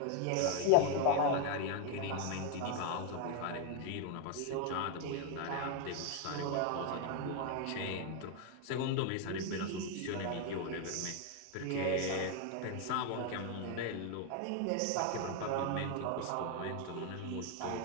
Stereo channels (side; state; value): both; different; correlation 0.01